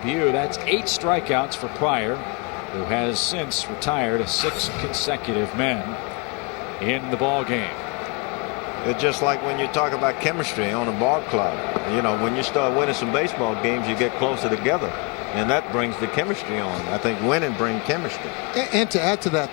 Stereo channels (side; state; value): right; quieter; 28.2 dB